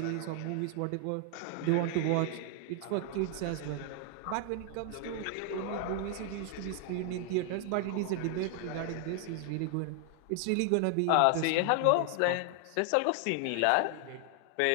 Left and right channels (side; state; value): both; different; correlation 0.00